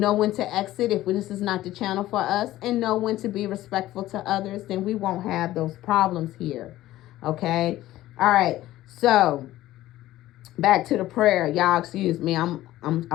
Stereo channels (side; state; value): right; quieter; 15.2 dB